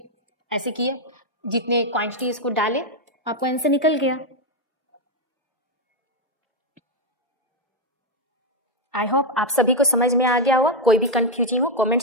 ऐसे किए, जितने क्वांटिटी इसको डाले आपको आंसर निकल गया। आई होप आप सभी को समझ में आ गया होगा। कोई भी कंफ्यूजिंग हो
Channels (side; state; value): both; normal; correlation 0.03